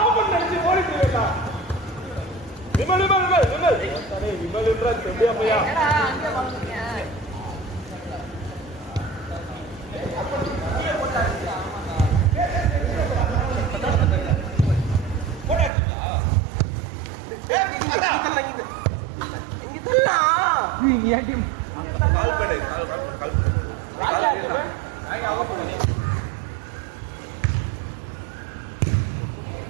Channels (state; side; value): drops out; left; at 15.7 s